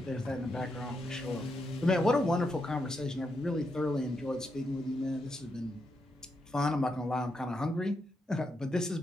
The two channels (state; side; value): normal; both; correlation 0.82